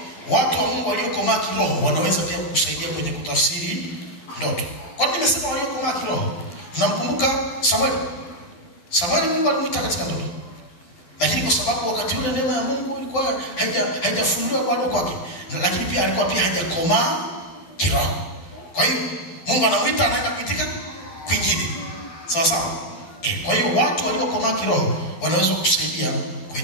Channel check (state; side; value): late; right; 12 ms